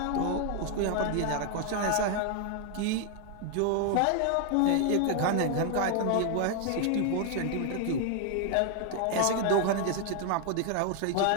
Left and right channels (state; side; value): different; both; correlation 0.00